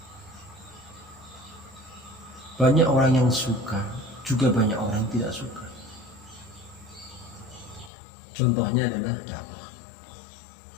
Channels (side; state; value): right; drops out; at 7.9 s